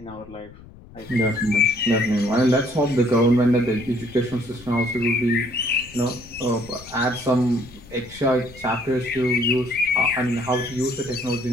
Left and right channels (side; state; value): left; noise; rumble, 21 dB below the sound